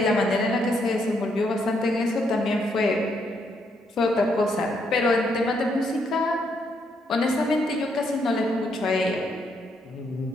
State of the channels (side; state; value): both; normal; correlation 0.75